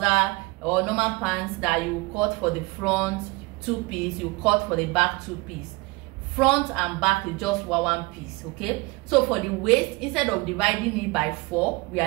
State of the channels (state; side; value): quieter; left; 24.2 dB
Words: or normal pants that you cut for the front 2-piece, you cut for the back 2-piece. Front and back is just 1 piece. Okay, so for the waist, instead of dividing it by 4, we